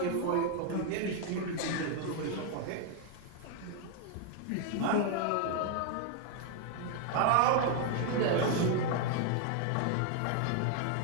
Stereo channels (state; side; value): different; both; correlation 0.00